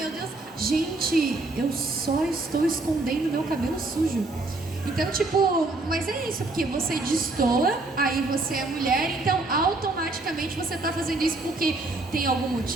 Deus. Gente, eu só estou escondendo meu cabelo sujo. Então, tipo, mas é isso, porque você destoa, aí você é mulher, então automaticamente você tá fazendo isso porque tem algum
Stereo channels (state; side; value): quieter; left; 3.1 dB